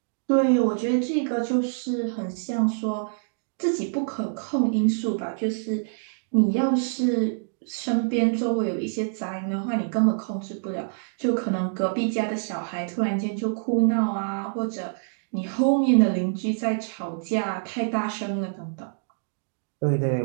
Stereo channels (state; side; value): silent; left; digital silence